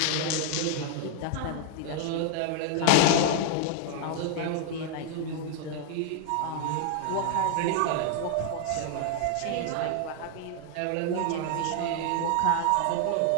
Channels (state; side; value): different; both; correlation 0.00